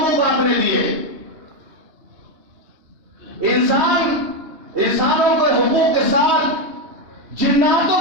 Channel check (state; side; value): late; left; 2.9 ms